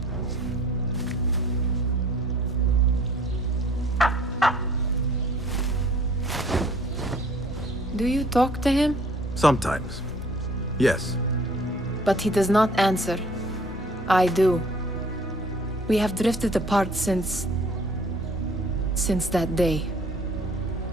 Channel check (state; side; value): normal; both; correlation 0.54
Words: Do you talk to him? Sometimes. Yes. But he does not answer. I do. We have drifted apart since that day.